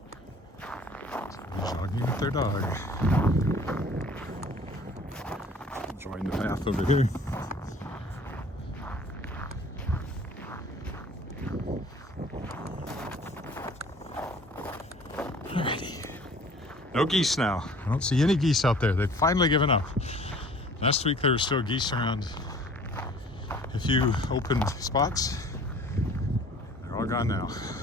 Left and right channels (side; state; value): both; normal; correlation 0.50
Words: Jogging with their dog. Join the path over here. Alrighty. No geese now. I don't see any geese out there. They've finally given up. Last week there were still geese around a few open spots. They're all gone now.